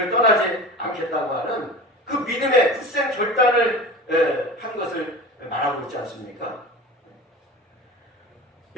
떠나지 않겠다고 하는 그 믿음의 굳센 결단을 한 것을 말하고 있지 않습니까?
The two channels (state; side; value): normal; both; correlation 0.33